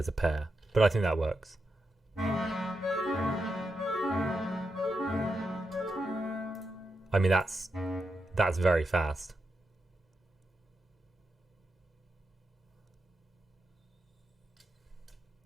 a pair, but I think that works. I mean, that's very fast.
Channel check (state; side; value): normal; both; correlation 0.86